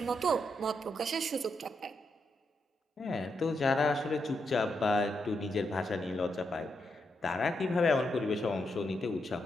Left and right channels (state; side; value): normal; both; correlation 0.82